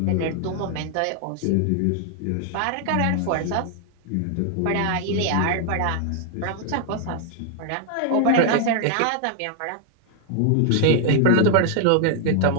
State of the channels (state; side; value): different; both; correlation 0.00